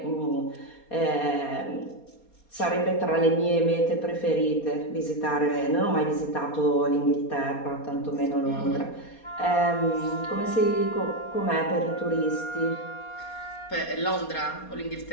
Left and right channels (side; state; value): right; late; 4.3 ms